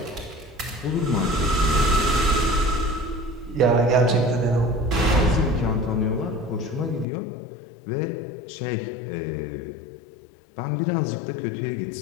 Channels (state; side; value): drops out; right; at 7.1 s